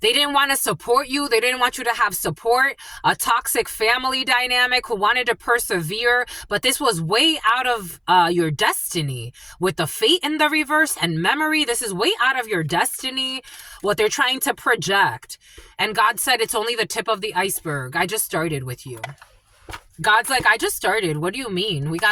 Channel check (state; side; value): identical; both; correlation 1.00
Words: They didn't want to support you. They didn't want you to have support. A toxic family dynamic who wanted to persevere. But this was way out of your destiny. With the fate in the reverse and memory, this is way out of your destiny. What they're trying to project. And God said it's only the tip of the iceberg. I just started with you. God's like, I just started. What do you mean? We